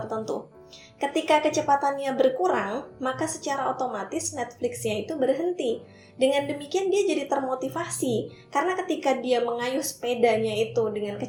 Ketika kecepatannya berkurang, maka secara otomatis Netflix-nya itu berhenti. Dengan demikian dia jadi termotivasi, karena ketika dia mengayuh sepedanya itu dengan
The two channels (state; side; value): identical; both; correlation 1.00